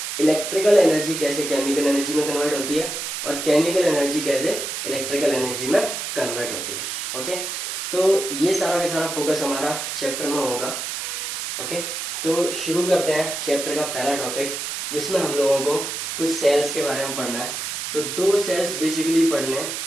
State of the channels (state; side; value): noise; right; hiss, 4 dB below the sound